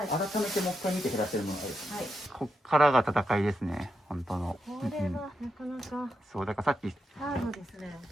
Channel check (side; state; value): both; normal; correlation 0.84